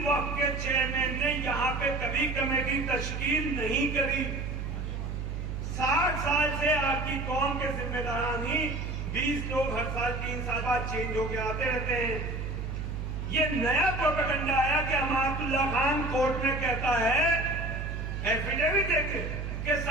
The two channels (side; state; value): right; noise; hum, 5 dB below the sound